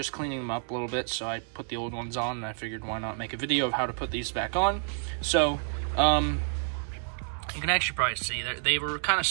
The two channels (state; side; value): silent; left; 58 dB below the other